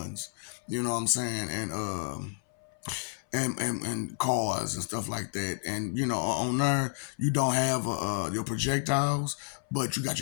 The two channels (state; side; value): silent; right; 57 dB below the other